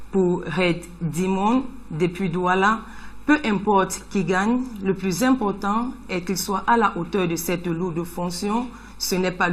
Pour Red Dimon, depuis Douala, peu importe qui gagne, le plus important est qu'il soit à la hauteur de cette lourde fonction. Ce n'est pas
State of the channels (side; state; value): both; identical; correlation 1.00